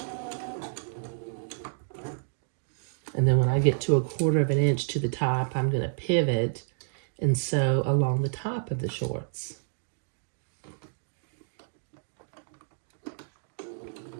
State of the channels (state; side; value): silent; left; digital silence